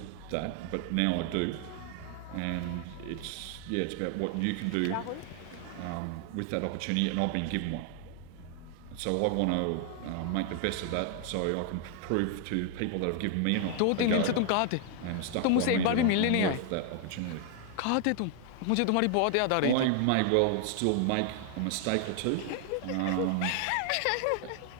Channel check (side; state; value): both; different; correlation 0.00